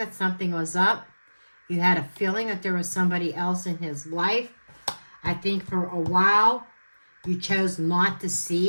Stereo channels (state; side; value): inverted; both; correlation -1.00